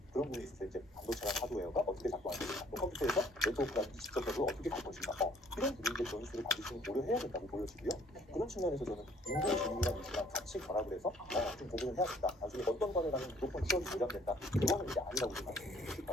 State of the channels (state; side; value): normal; both; correlation 0.60